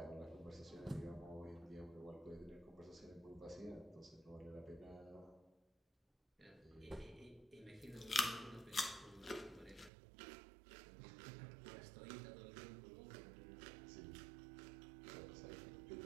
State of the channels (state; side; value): drops out; left; at 9.9 s